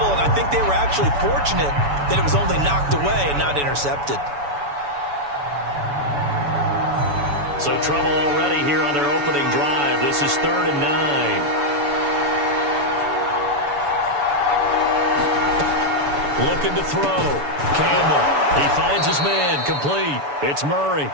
and I think they were actually fortunate that it was only knocked away and not intercepted. So trouble already here on their opening drive. This is 3rd and 9. Looking to throw. Campbell. He finds his man. Complete. It's Murray.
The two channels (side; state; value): left; late; 7.0 ms